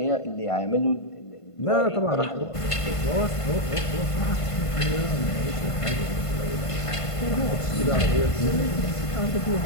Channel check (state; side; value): late; right; 1.5 ms